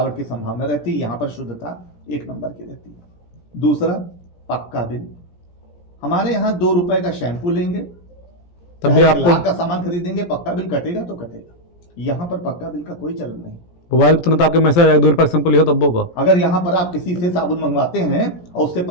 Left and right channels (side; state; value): right; late; 17 ms